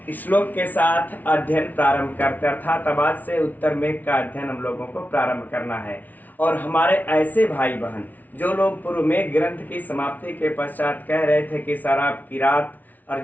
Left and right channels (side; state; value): right; late; 0.079 ms